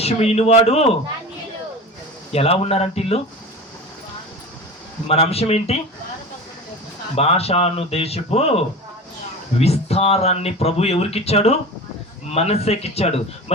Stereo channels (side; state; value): both; normal; correlation 0.33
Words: ఇనువాడు. ఎలా ఉన్నారంటే ఇల్లు? మన అంశం ఏంటి? భాషాను దేశపు విస్తారాన్ని ప్రభు ఎవరికిచ్చాడు? మనస్సేకిచ్చాడు.